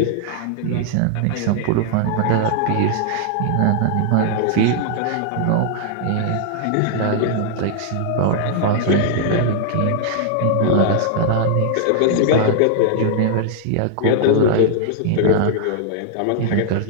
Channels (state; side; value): different; both; correlation -0.01